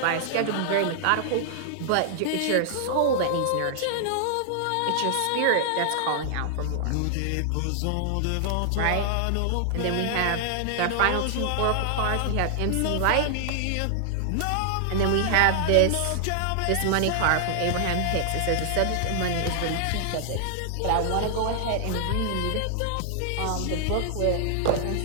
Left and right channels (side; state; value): both; different; correlation -0.01